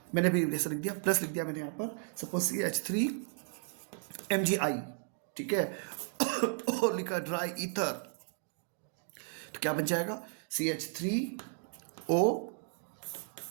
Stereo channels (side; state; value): left; silent; 55 dB below the other